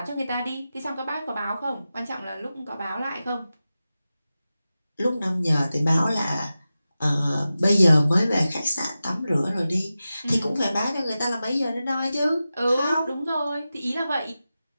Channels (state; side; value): inverted; both; correlation -0.94